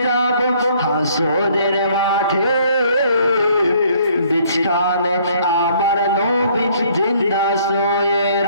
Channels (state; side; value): inverted; both; correlation -0.61